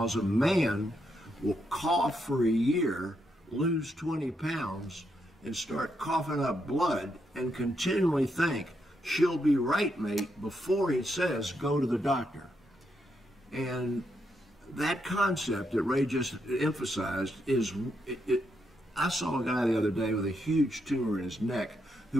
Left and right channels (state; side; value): normal; both; correlation 0.80